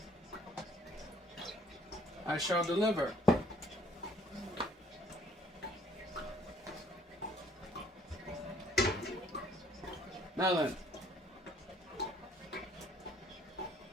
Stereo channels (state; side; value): normal; both; correlation 0.61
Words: I shall deliver. Now then,